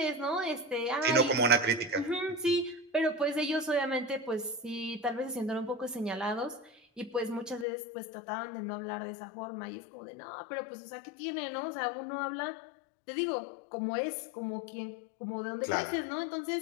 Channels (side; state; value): right; drops out; at 7.7 s